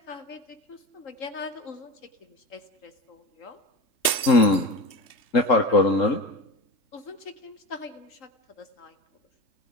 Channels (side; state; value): right; late; 3.2 ms